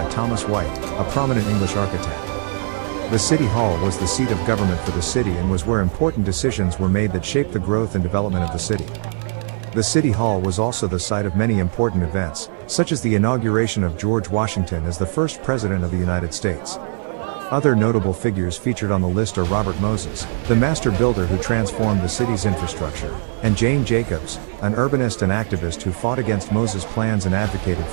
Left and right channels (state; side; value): silent; left; digital silence